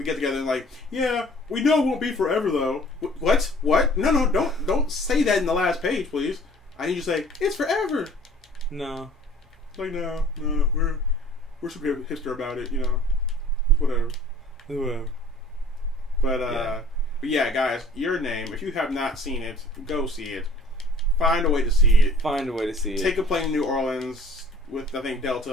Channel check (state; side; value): normal; both; correlation 0.51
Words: get together and like, yeah, we know it won't be forever though. What? No, don't say that in the last page, please. I need you to say it's forever. No. Like no, we're super hipster about it, you know. Whatever. But yeah, guys, Your Name. If you have not seen it, go see it. Find a way to see it. Take a plane to New Orleans with, I think,